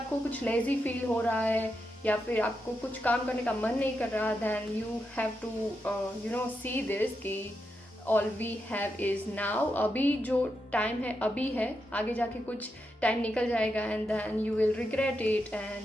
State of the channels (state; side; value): normal; both; correlation 0.85